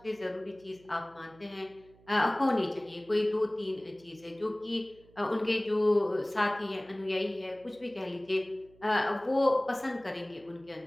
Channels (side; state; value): right; noise; hum, 27 dB below the sound